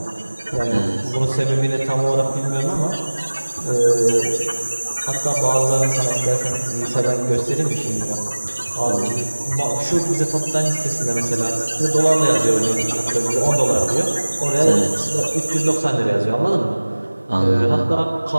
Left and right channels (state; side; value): inverted; both; correlation -1.00